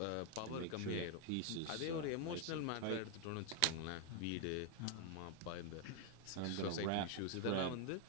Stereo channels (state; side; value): different; both; correlation 0.00